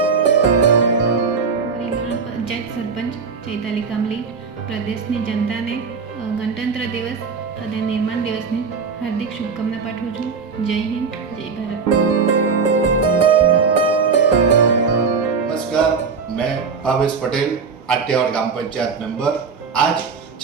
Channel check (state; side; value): quieter; left; 5.2 dB